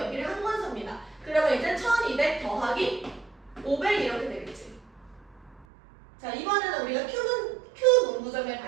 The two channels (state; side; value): drops out; left; at 5.7 s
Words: 1권 삽니다. 그러면 이제 1200 더하기 500 이렇게 되겠지. 자, 이번에는 우리가 Q 문구점에